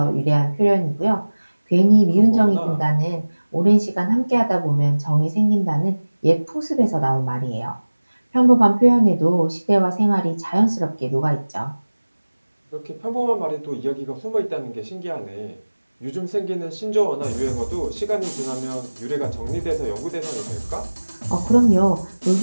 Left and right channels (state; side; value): inverted; both; correlation -1.00